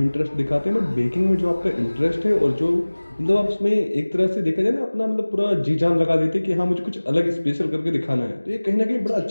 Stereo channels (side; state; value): both; inverted; correlation -1.00